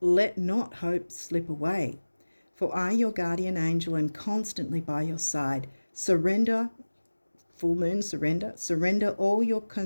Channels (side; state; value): both; inverted; correlation -1.00